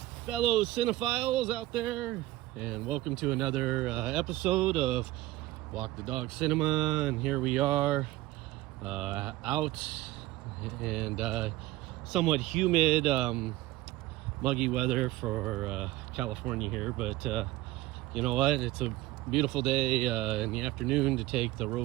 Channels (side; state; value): left; quieter; 17.4 dB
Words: fellow cinephiles out there, and welcome to another episode of Walk the Dog Cinema. And here we are out and somewhat humid, muggy weather for California here, but you know what, it's a beautiful day in the afternoon to take the